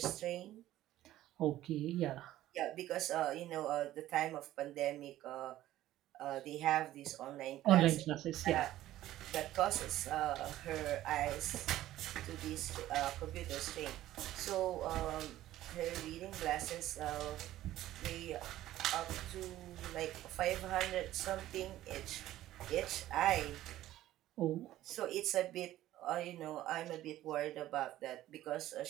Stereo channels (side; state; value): left; quieter; 14.3 dB